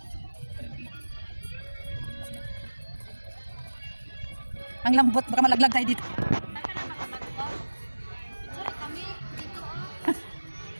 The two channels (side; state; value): both; inverted; correlation -1.00